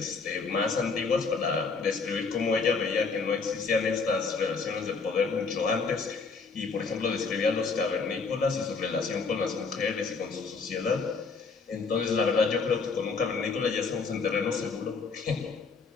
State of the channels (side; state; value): right; quieter; 4.7 dB